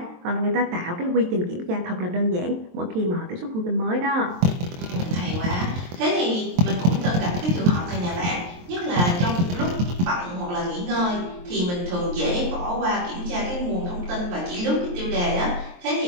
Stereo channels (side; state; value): left; late; 23 ms